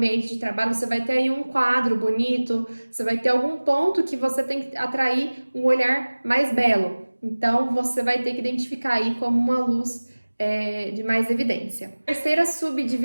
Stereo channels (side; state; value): both; inverted; correlation -1.00